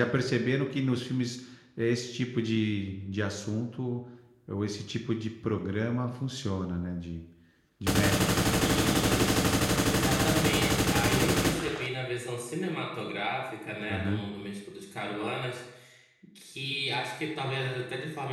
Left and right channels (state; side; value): identical; both; correlation 1.00